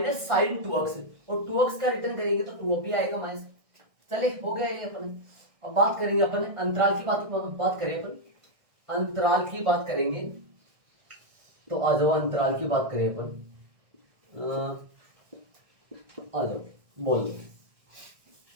साइन 2x, और 2x का रिटर्न करेंगे तो 2 भी आएगा माइनस। चले हो गया ये अपन। अब बात करेंगे अपन अंतराल की बात करें अपन अंतराल की बात करेंगे, तो आ जाओ अंतराल की बात करें अपन, आ जाओ बोल।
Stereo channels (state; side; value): late; left; 1.6 ms